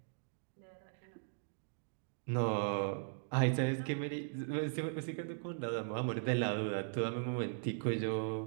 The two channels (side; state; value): left; silent; digital silence